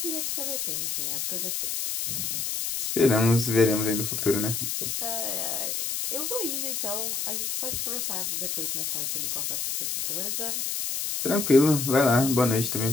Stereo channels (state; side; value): noise; left; hiss, 2 dB below the sound